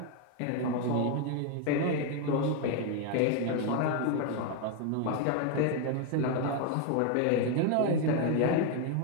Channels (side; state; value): both; different; correlation 0.01